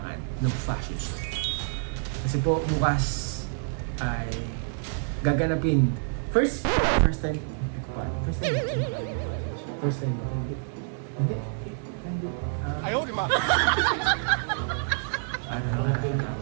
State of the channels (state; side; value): silent; left; digital silence